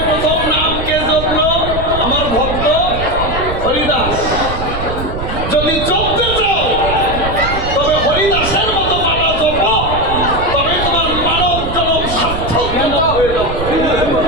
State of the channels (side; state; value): right; noise; rumble, 7 dB below the sound